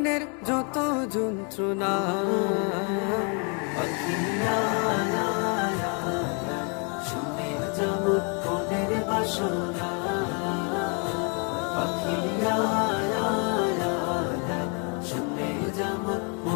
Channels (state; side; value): quieter; right; 37.2 dB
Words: যত যন্ত্রণা পাখিরা শুনে যেমন মনের বাসনা পাখিরা শুনে যেমন